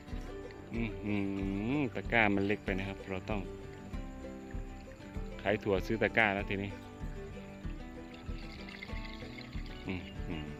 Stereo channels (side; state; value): both; identical; correlation 1.00